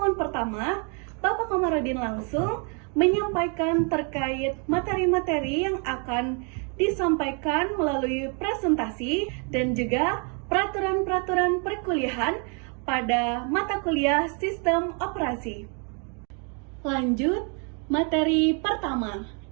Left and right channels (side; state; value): left; quieter; 36.7 dB